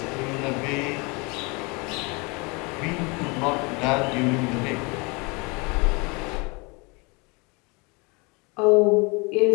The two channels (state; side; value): quieter; right; 28.7 dB